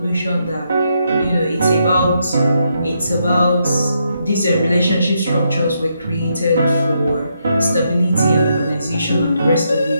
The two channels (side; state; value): both; inverted; correlation -0.79